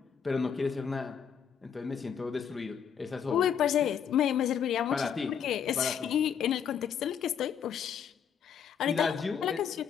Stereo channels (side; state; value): right; quieter; 7.8 dB